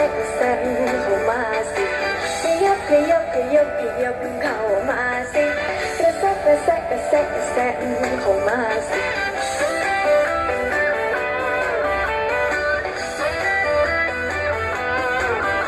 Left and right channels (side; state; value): both; identical; correlation 1.00